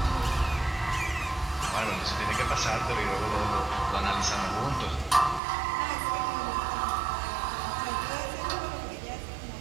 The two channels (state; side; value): drops out; left; at 5.4 s